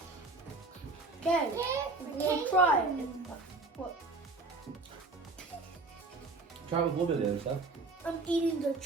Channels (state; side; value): quieter; left; 3.4 dB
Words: Okay, we'll try it. What? Try with a little bit of the other stuff. I'm eating the